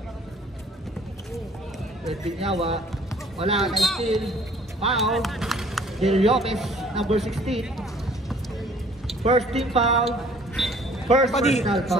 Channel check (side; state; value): both; normal; correlation 0.56